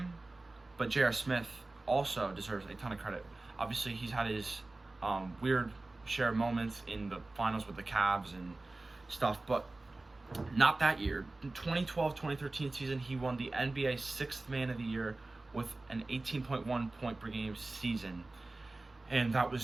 but J.R. Smith also deserves a ton of credit. Obviously, he's had his weird share of moments in the finals with the Cavs and stuff, but not that year. In 2012-2013 season, he won the NBA 6th Man of the Year with an 18.1 point per game season, and that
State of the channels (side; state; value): left; quieter; 3.1 dB